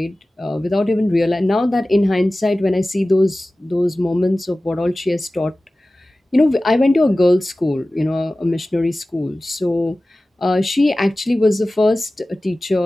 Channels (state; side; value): normal; both; correlation 0.97